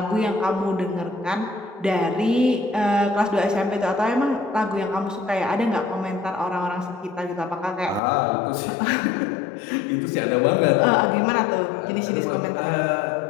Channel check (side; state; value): right; drops out; at 8.0 s